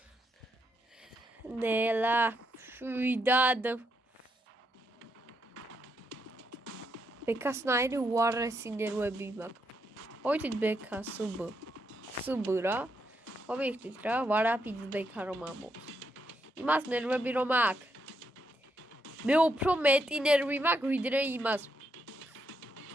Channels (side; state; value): both; normal; correlation 0.79